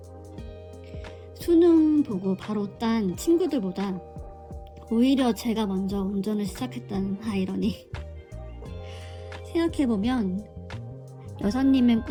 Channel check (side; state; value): both; identical; correlation 1.00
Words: 수능 보고 바로 딴 친구들보다 오히려 제가 먼저 운전을 시작했다는 아이러니. 생각해보면 여사님의